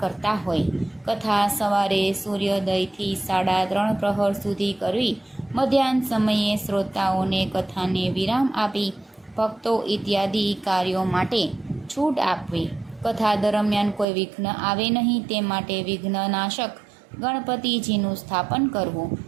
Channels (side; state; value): left; drops out; at 14.1 s